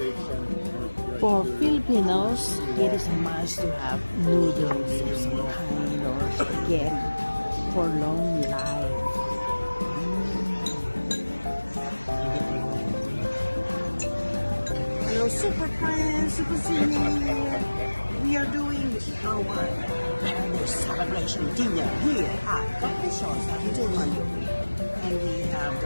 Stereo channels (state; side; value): inverted; both; correlation -1.00